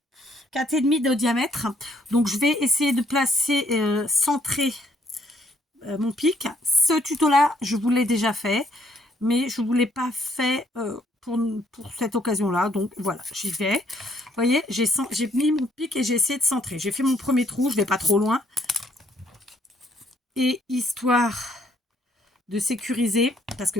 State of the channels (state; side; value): normal; both; correlation 0.68